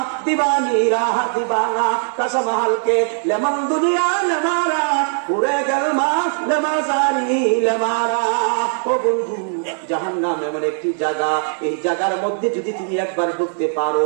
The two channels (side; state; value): left; silent; 59 dB below the other